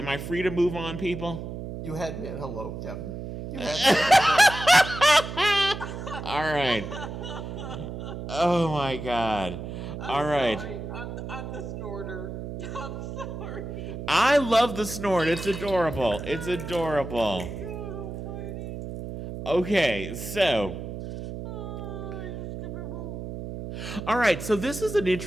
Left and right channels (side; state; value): right; noise; hum, 8 dB below the sound